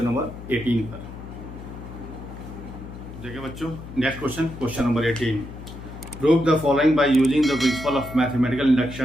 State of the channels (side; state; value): left; noise; hum, 13 dB below the sound